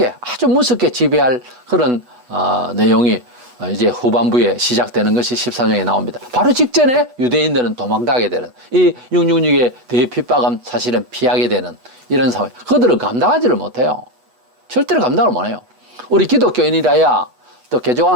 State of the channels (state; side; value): late; left; 8.0 ms